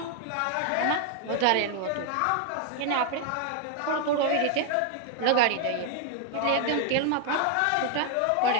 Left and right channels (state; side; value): different; both; correlation 0.00